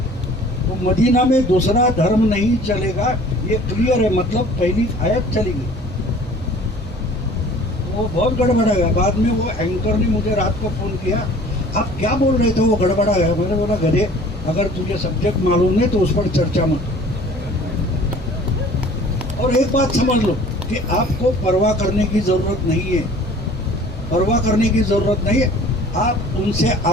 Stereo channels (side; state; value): both; normal; correlation 0.49